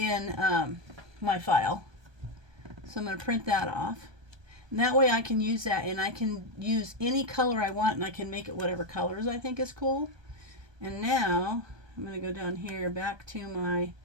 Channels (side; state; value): left; late; 1.2 ms